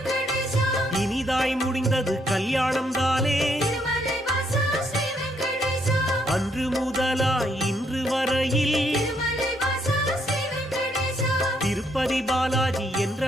இனிதாய் முடிந்தது கல்யாணம் தானே. திருமலை வாசா ஸ்ரீ வெங்கடேசா அன்று முதலாய் இன்று வரையில் திருமலை வாசா ஸ்ரீ வெங்கடேசா திருப்பதி பாலாஜி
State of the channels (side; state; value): both; normal; correlation 0.72